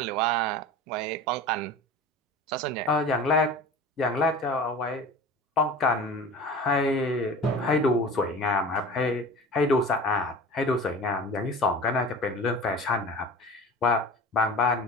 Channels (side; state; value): both; normal; correlation 0.37